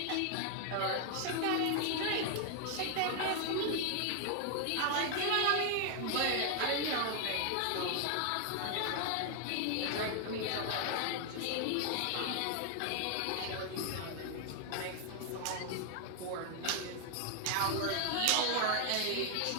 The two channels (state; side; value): different; both; correlation 0.00